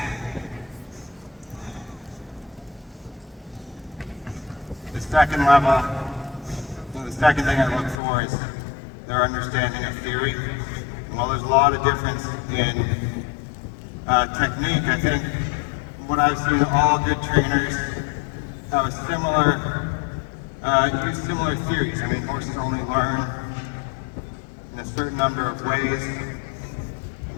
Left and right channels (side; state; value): right; drops out; at 8.0 s